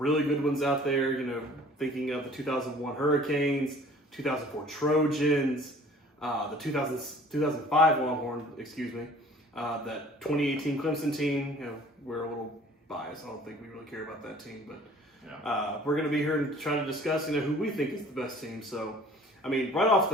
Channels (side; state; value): both; normal; correlation 0.50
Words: good ones out there, thinking of the 2001 Hurricanes, 2004 Trojans, the 2005 Longhorn, that 2018 Clemson team. We're a little biased. I don't think we really care about that team, but we're going to be here and try to discuss, who we think is the best team. So, right off